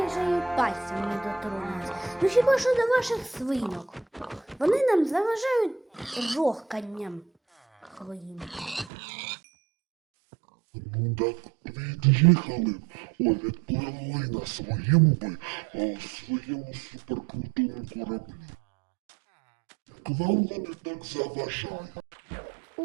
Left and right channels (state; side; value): drops out; left; at 8.9 s